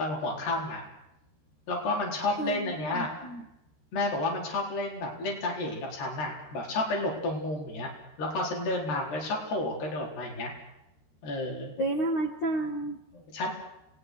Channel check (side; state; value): right; late; 13 ms